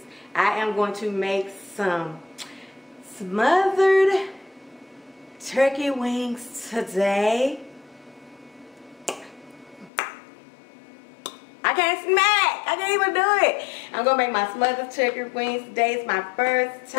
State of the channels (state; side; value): drops out; right; at 9.9 s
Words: I am going to make some smothered turkey wings today. I can't smack. I can't even do it. I'm going to make my smothered turkey wings today. It's my first